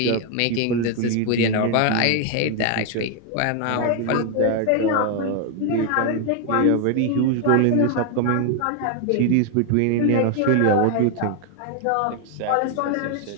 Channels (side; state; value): both; different; correlation 0.01